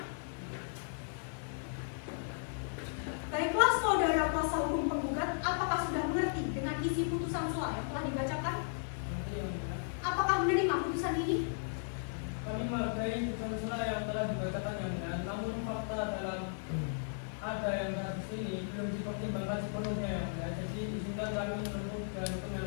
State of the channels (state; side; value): silent; right; 54 dB below the other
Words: Baiklah saudara kuasa hukum penggugat, apakah sudah mengerti dengan isi putusan selah yang telah dibacakan? Apakah menerima putusan ini? Kami menghargai putusan selah yang telah dibacakan yang benar, namun fakta dalam ada yang kasus ini belum dipertimbangkan sepenuhnya yang benar. Jadi izinkan kami menempuh dan hukum